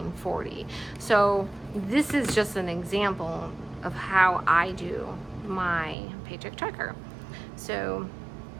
So this is just an example of how I do my paycheck tracker. So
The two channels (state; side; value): drops out; left; at 6.0 s